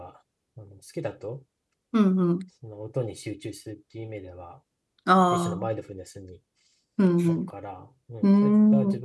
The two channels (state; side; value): identical; both; correlation 1.00